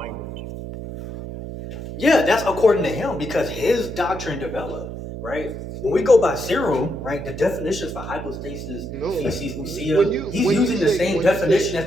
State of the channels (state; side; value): noise; right; hum, 9 dB below the sound